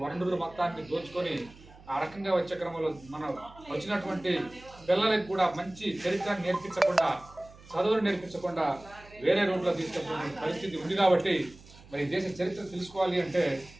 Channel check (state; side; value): noise; right; hum, 22 dB below the sound